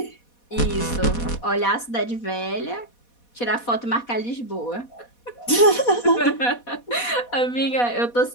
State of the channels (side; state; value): right; late; 4.1 ms